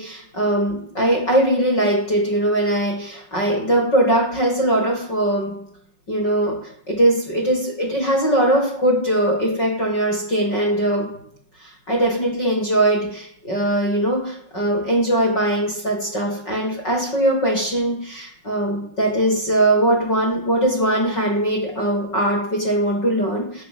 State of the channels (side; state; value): right; late; 5.5 ms